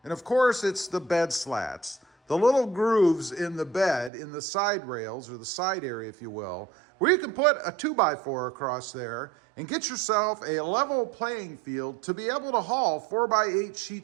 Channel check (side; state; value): left; drops out; at 4.1 s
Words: And of course, it's the bed slats. The little grooves in the bed, in the side rails, or the side area, if you will, where you can put a 2x4 across there and get yourself a level playing field to be able to haul 4x8